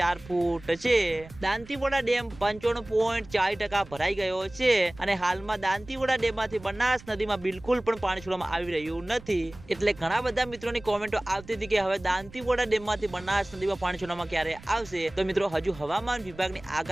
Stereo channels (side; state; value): right; noise; rumble, 19 dB below the sound